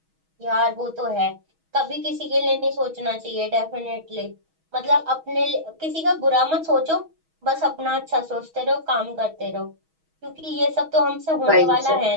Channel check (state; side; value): late; left; 6.2 ms